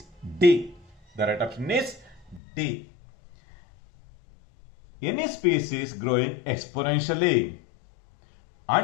D. The right option is D. Any species growing exponentially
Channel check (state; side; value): drops out; right; at 2.4 s